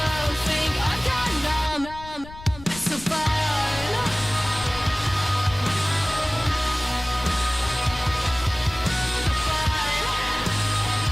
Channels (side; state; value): left; noise; rumble, 16 dB below the sound